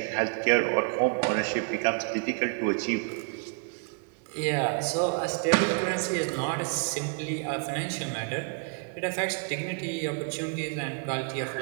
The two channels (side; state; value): left; quieter; 37.0 dB